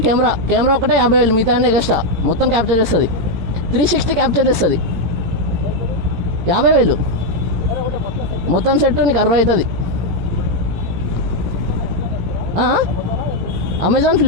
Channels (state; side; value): late; left; 17 ms